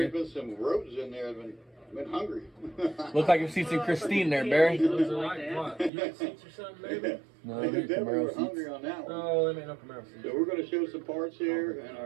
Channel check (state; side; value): drops out; left; at 5.9 s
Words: There's been some roaches in there that have been hungry. Look like your seats in Christine there, Barry. those are like what? You got seats or something, maybe? No, They they're definitely were Camaro hungry seats. on that one. No, they made no Camaro seats. So we're going to show some parts here in